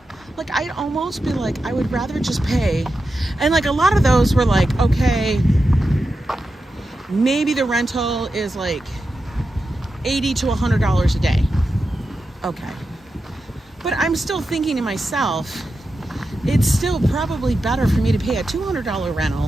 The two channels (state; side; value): normal; both; correlation 0.90